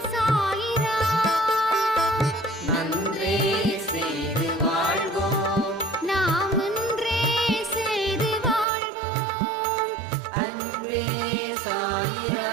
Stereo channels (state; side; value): drops out; left; at 8.7 s